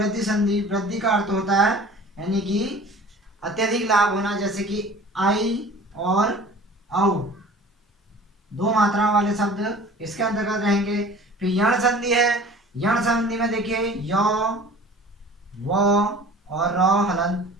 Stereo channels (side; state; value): both; normal; correlation 0.44